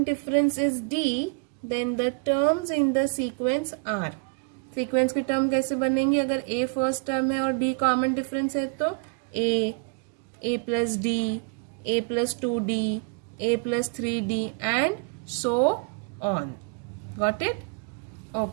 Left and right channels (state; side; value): quieter; left; 36.7 dB